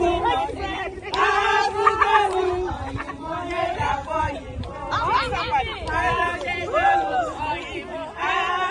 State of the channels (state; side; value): identical; both; correlation 1.00